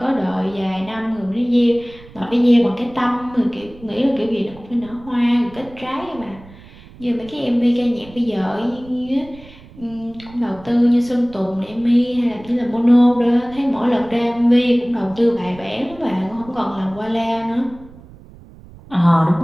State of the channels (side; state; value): right; noise; rumble, 21 dB below the sound